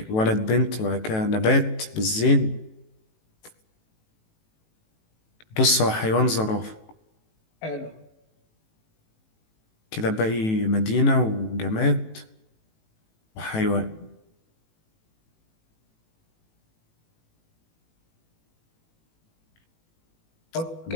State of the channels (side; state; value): right; late; 18 ms